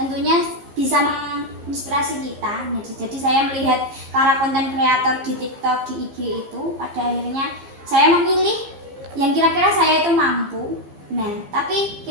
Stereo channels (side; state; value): left; late; 15 ms